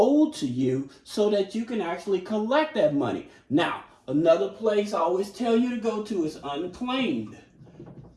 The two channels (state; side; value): identical; both; correlation 1.00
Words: to you, so that you can actually collect that money. Now, another place I always tell you to go to is Unclaimed.